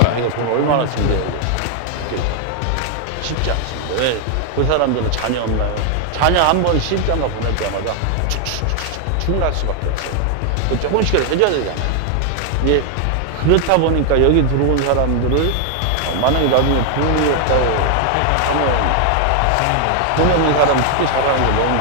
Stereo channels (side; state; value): both; different; correlation 0.00